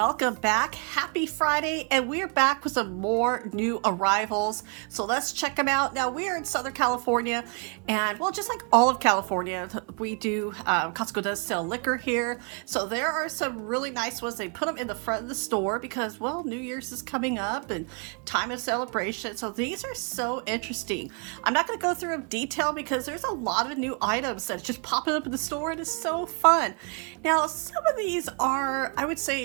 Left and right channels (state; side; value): quieter; left; 37.6 dB